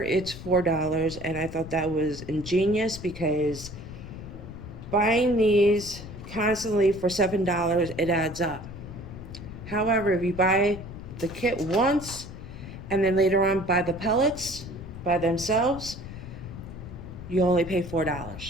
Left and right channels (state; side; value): noise; left; rumble, 12 dB below the sound